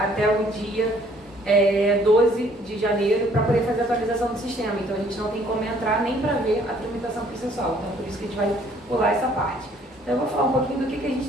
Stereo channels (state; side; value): normal; both; correlation 0.61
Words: o dia 12 de janeiro, para poder fazer a atualização do sistema. Então, a gente não tem como entrar nem para ver a tramitação processual. Então, por isso que a gente vai pular essa parte. Então, eu vou falar um pouquinho do que a gente